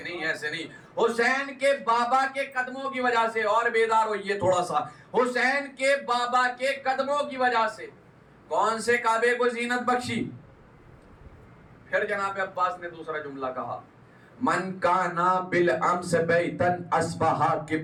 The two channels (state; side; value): identical; both; correlation 1.00